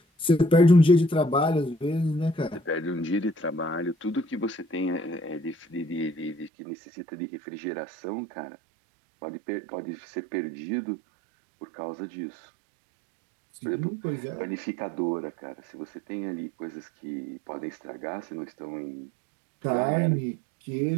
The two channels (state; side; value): drops out; left; at 6.5 s